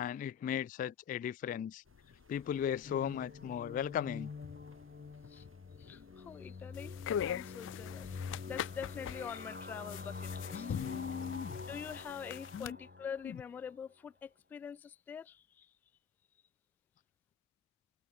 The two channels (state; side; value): quieter; right; 7.8 dB